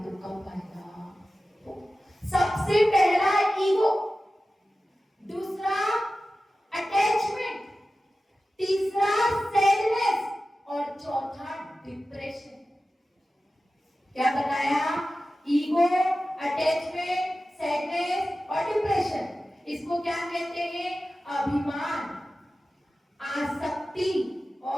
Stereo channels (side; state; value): both; normal; correlation 0.94